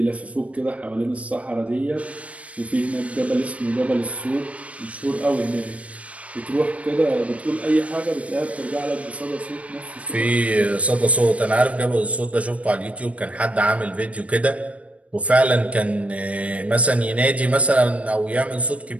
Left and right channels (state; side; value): late; left; 0.065 ms